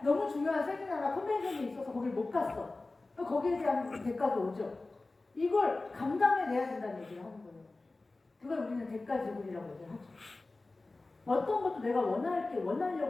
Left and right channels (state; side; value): quieter; right; 3.3 dB